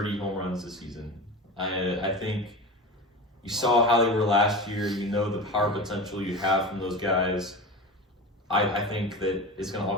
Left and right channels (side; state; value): both; normal; correlation 0.29